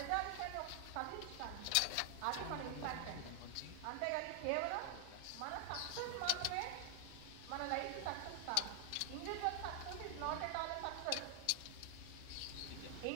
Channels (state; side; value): different; both; correlation 0.00